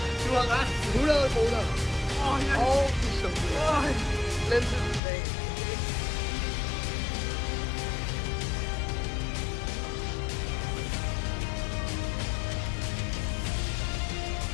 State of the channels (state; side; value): drops out; right; at 5.0 s